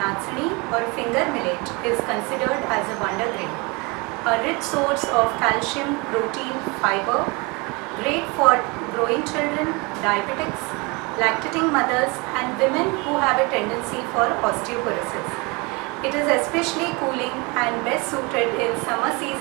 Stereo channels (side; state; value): left; quieter; 27.9 dB